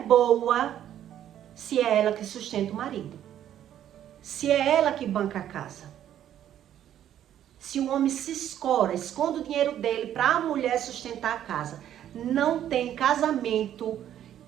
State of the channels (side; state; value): left; quieter; 11.0 dB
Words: boa se é ela que sustenta o marido. Se é ela que banca a casa. Se o homem se esconde o dinheiro dele para a mulher sustentar a casa. Não tem casamento